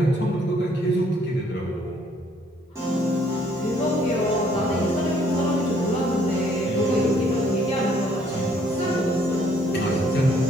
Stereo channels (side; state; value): both; normal; correlation 0.64